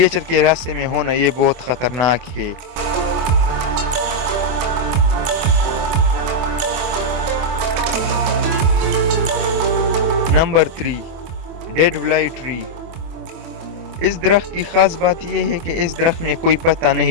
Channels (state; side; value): late; left; 24 ms